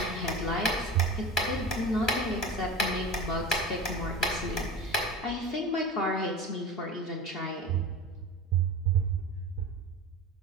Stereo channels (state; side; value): normal; both; correlation 0.32